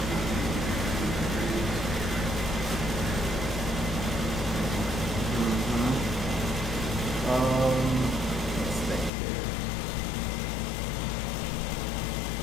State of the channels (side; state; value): right; drops out; at 9.1 s